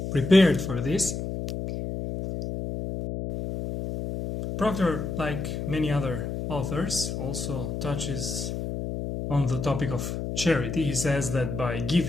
prepared for this. Proctor, like many other authors, also touches on the topic of charity. He says that by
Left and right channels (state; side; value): noise; left; hum, 4 dB below the sound